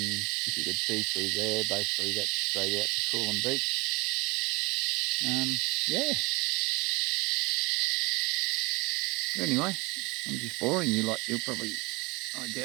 you could see through there, basically that's straight out to Coolum Beach. Yeah. But anyway, I'm just boring you like you'll probably, I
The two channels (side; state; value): left; quieter; 25.9 dB